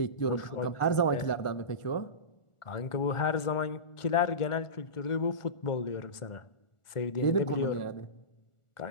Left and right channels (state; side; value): late; right; 1.4 ms